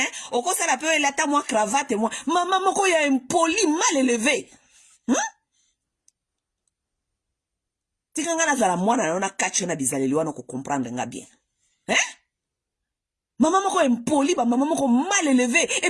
oko sala pe elata moi cravate moi. Maman moko ya impoli mal élevé. Tikanga na zala mwana na kacho na bizaleli wana ko comprendre nga bien. Maman moko impoli, maman moko mal élevé. Et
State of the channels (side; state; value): both; identical; correlation 1.00